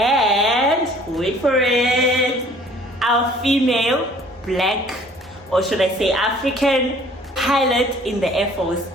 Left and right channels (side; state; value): both; normal; correlation 0.54